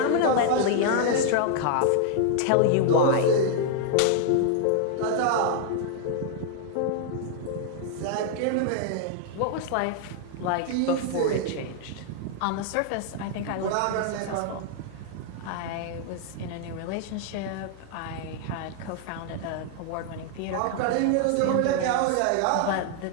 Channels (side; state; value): both; different; correlation 0.00